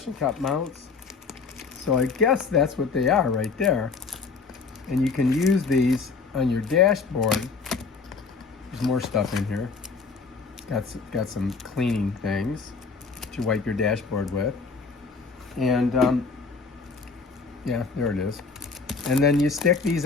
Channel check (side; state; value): right; quieter; 4.7 dB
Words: Cup Mounts. So I guess that's what they are right there. And you can use these on your dashboard. There's more stuff in here. Got some cleaning things to wipe your dashboard with. And yeah, there it is. And then you stick these